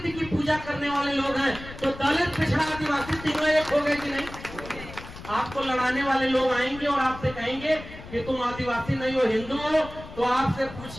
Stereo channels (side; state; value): left; noise; rumble, 14 dB below the sound